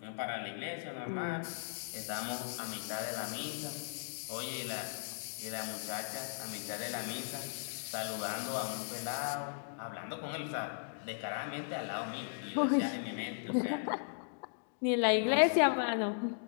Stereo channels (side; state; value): right; silent; digital silence